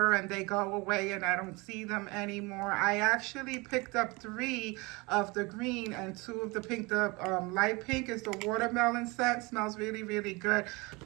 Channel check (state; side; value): quieter; left; 25.7 dB